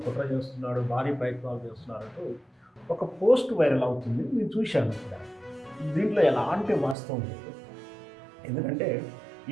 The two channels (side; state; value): left; drops out; at 7.0 s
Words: కుట్ర చేస్తున్నాడు, భారీ ప్రయత్నాలు చేస్తున్నారంటూ ఒక పోస్ట్ వైరల్ అవుతుంది. నేను చూశాను. ఇక్కడ దీంట్లో ఎలాంటి వాస్తవం లేదు. ఎందుకంటే